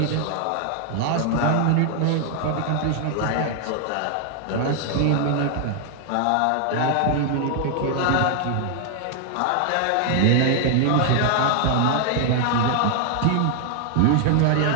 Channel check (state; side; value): different; both; correlation 0.00